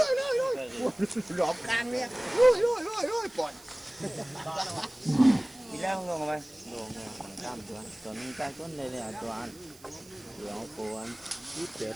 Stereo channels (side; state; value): right; noise; hiss, 23 dB below the sound